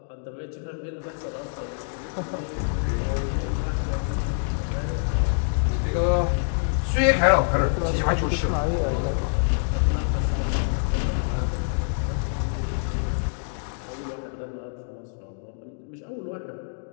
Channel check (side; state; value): right; silent; digital silence